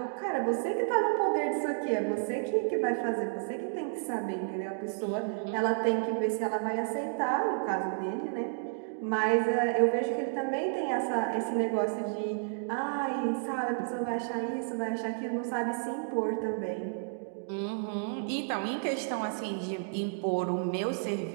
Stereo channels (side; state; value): left; silent; digital silence